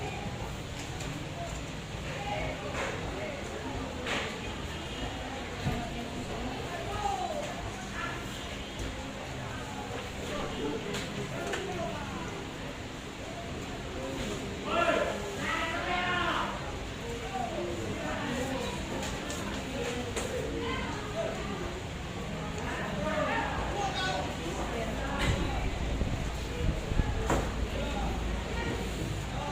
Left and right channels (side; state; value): both; identical; correlation 1.00